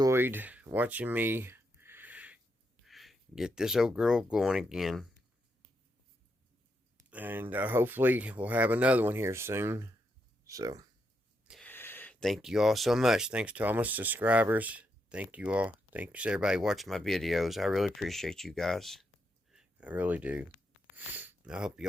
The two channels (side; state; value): both; normal; correlation 0.81